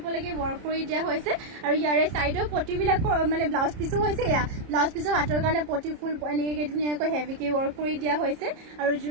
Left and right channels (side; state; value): left; late; 30 ms